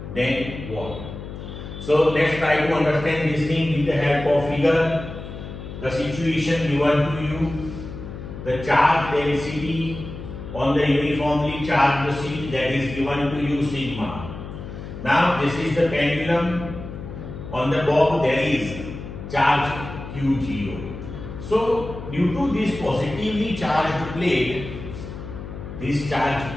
then what? So let's try to understand this thing with the help of figure. The situation given to you, the charge density on the uniformly charged sheet, that is given to you sigma. Now this is the pendulum. On the bob there is charge Q0. So due to this positively charged plate, this charge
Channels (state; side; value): noise; left; hum, 10 dB below the sound